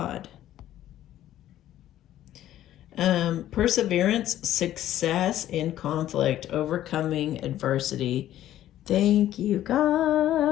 Perseverance, success in conflict, overcoming adversity. Thank you,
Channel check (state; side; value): quieter; right; 12.8 dB